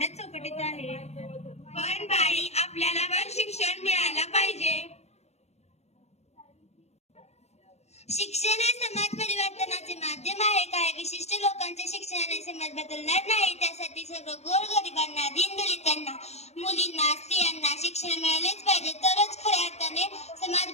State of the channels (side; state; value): right; late; 0.31 ms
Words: चौकटीत आहे. पण बाई, आपल्याला पण शिक्षण मिळायला पाहिजे. शिक्षण हे समाज परिवर्तनाचे माध्यम आहे. काही विशिष्ट लोकांच्या शिक्षणाने समाज बदलणार नाही. त्यासाठी सर्व गोरगरिबांना, दीनदलितांना, मुलींना, स्त्रियांना शिक्षण मिळालेच पाहिजे, तरच खऱ्या अर्थाने समाज